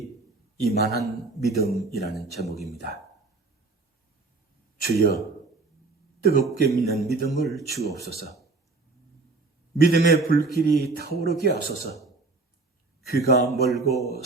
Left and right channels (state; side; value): quieter; left; 3.6 dB